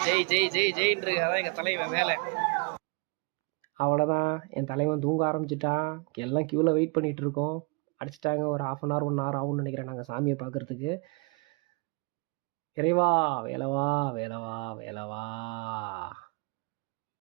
ஜெய் ஜெய் ஜெய் ஜெயின்னு. அதான் எங்கள் தலைவன் வேலை. அவ்வளோதான், என் தலைவன் தூங்க ஆரம்பிச்சிட்டான். எல்லாம் க்யூவில் வெயிட் பண்ணிகிட்டு இருக்கோம். அடிச்சிட்டாங்க. ஒரு 1/2 hour 1 hour ஆகும்னு நினைக்கிறேன் நாங்கள் சாமியை பார்க்குறதுக்கு. இறைவா வேலவா வேலவா வேலவா.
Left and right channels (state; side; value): quieter; left; 31.7 dB